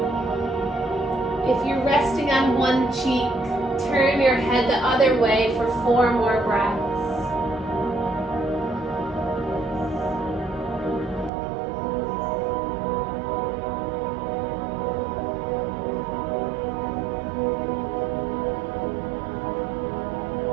If you're resting on one cheek, turn your head the other way for 4 more breaths.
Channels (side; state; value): left; drops out; at 11.3 s